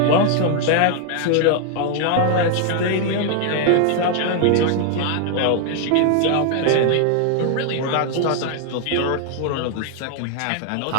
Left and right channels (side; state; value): both; different; correlation 0.00